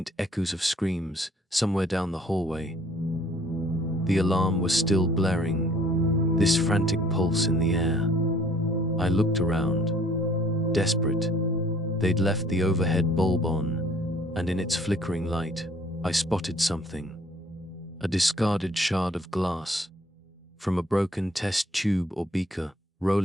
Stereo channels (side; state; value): both; normal; correlation 0.58